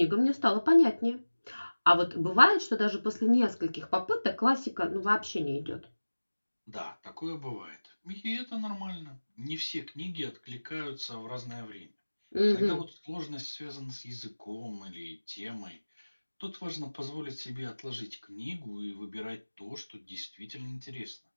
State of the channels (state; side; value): inverted; both; correlation -1.00